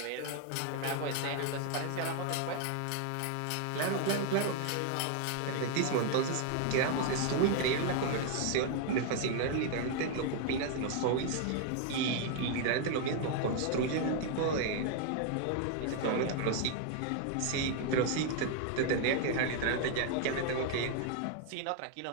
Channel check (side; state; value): both; different; correlation 0.00